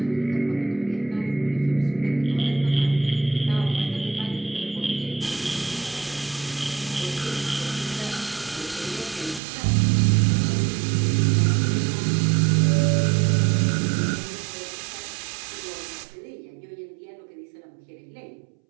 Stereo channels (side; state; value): left; drops out; at 9.4 s